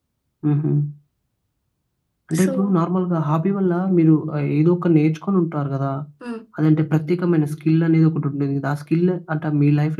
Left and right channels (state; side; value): identical; both; correlation 1.00